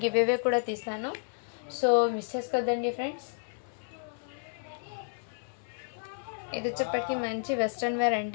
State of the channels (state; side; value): silent; right; 57 dB below the other